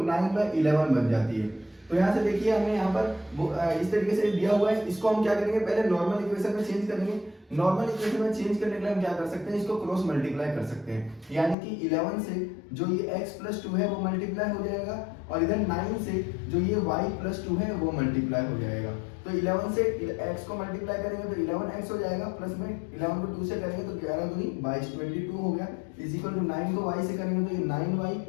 बन जाती है। तो यहाँ से देखिए हमें यहाँ पर इस तरीके से दिया हुआ है, इसको हम क्या करेंगे, पहले नॉर्मल इक्वेशन में चेंज करेंगे। नॉर्मल इक्वेशन में चेंज करने के लिए हम क्या कर सकते हैं, इसको क्रॉस मल्टीप्लाई कर सकते हैं, यानी कि 11 से जो ये x + 2 है वो मल्टीप्लाई हो जाएगा और इधर 9 से जो ये y + 2 है वो मल्टीप्लाई हो जाएगा। तो 11 से x को मल्टीप्लाई करेंगे तो 11x हो जाएगा, प्लस में 11 को 2 से करेंगे तो 11 दूनी 22 22 हो गया, इज इक्वल टू 9 को y से करेंगे तो ये 9y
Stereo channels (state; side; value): drops out; right; at 11.6 s